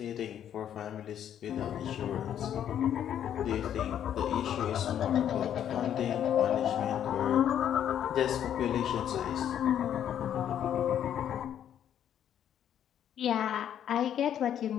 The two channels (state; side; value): quieter; right; 9.9 dB